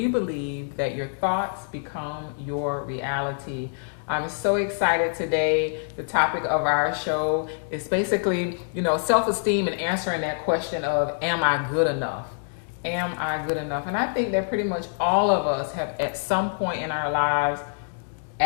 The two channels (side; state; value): right; silent; digital silence